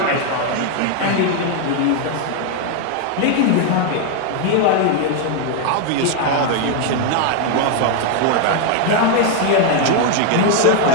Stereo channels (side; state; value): both; different; correlation 0.01